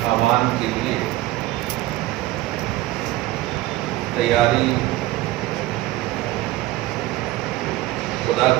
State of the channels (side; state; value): left; quieter; 17.0 dB